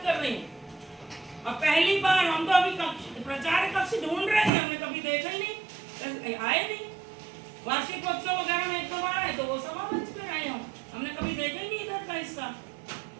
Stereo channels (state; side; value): drops out; left; at 4.5 s